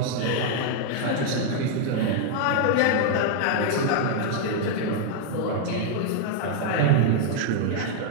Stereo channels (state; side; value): different; both; correlation 0.00